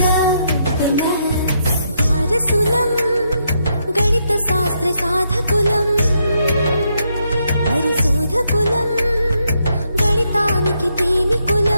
వారసులం గణిత శాస్త్ర సాధకులం, పరిశోధకులం, గణితానికి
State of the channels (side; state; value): both; inverted; correlation -0.78